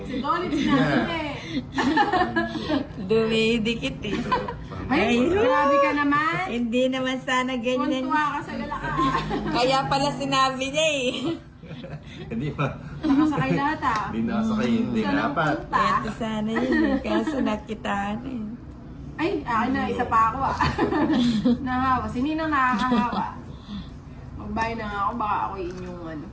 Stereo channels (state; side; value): identical; both; correlation 1.00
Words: Si Dolly sinabi eh. Dumidikit eh. Ay, Ay, grabe ka naman. Hindi naman sana ganyan. Kuntuwa ka sa galakaan. Kaya pala sinabi niya eh. Hindi pa. Nakasakay lahat ah. Hindi nakasakay. Hindi Saan ang dapat. punta? Ito sana yun eh. Kaso nakitaan eh. Ay, akin na, isa pa ako ah. Nahawa. Sininang nakakahawa. Magbayad na nga ako, baka ako inyong ano.